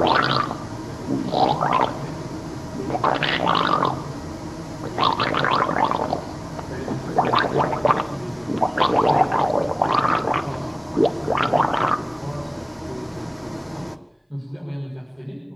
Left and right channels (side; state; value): both; identical; correlation 1.00